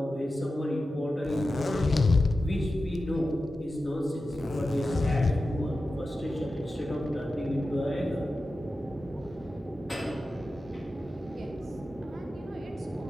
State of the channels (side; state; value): both; normal; correlation 0.93